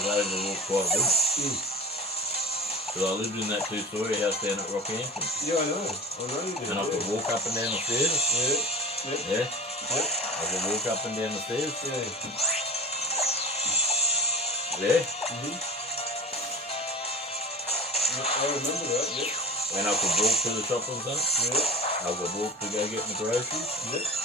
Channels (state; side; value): normal; both; correlation 0.35